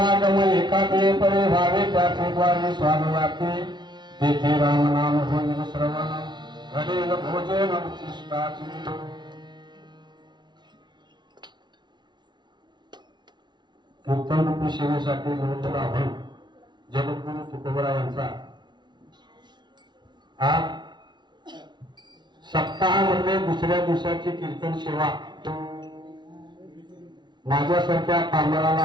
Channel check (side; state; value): left; late; 0.21 ms